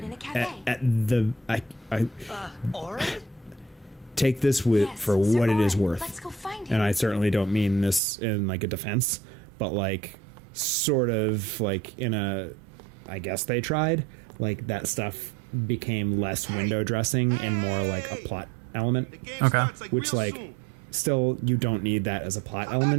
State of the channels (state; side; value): drops out; left; at 8.0 s